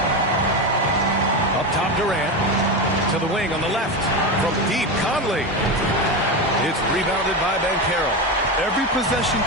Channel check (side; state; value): both; normal; correlation 0.17